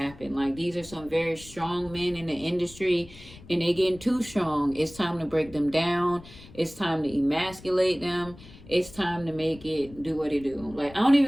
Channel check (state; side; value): noise; left; rumble, 19 dB below the sound